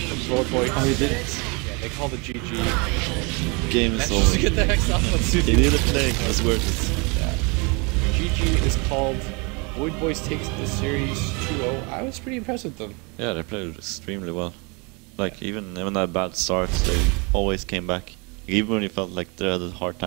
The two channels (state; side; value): quieter; left; 30.4 dB